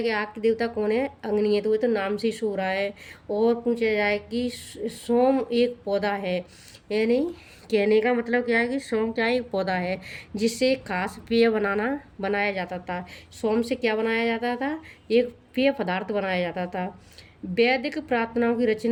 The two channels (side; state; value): both; identical; correlation 1.00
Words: कि आग के देवता कौन है, अग्नि है, तो ये तो नाम से ही सो रहा है। और पूछा जाए कि सोम एक पौधा है, यानी कहने का मतलब क्या है कि सोम क्या है, एक पौधा है जिससे खास पेय बनाया जाता था। सोम से क्या बनाया जाता था, एक पेय पदार्थ बनाया जाता था। वैदिक प्रार्थनाओं की